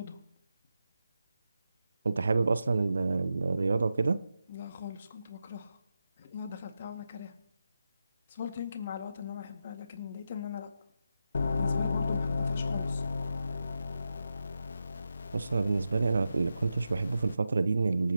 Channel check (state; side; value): inverted; both; correlation -0.89